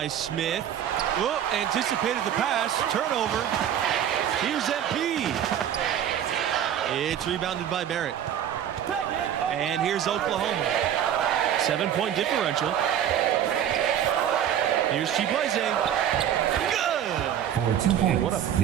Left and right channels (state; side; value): quieter; left; 10.0 dB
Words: Smith. Whoop, anticipated the pass. Turnover. Here's MP. It's rebounded by Barrett. And here's Oklahoma. 7-point differential. Here's Chibueze. Good. For 2 points. What a